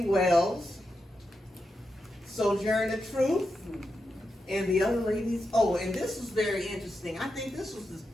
Sojourner Truth, and the other ladies. Oh, and this was very interesting. I think this was the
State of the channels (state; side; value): normal; both; correlation 0.87